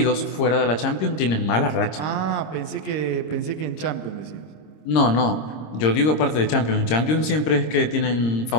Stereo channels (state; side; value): late; right; 26 ms